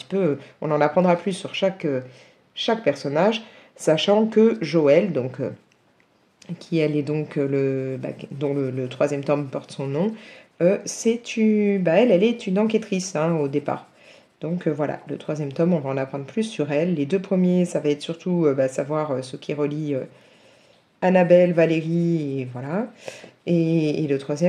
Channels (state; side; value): identical; both; correlation 1.00